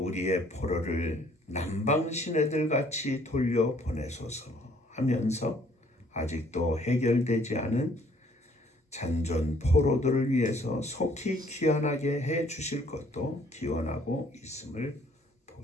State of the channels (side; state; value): both; normal; correlation 0.61